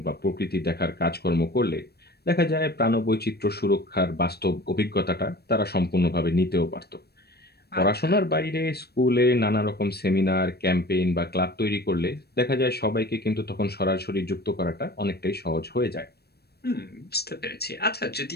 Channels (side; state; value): right; late; 0.47 ms